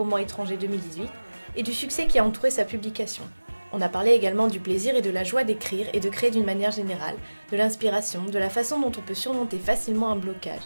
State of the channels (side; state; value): both; inverted; correlation -1.00